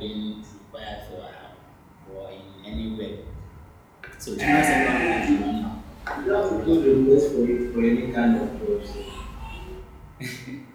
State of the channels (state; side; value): identical; both; correlation 1.00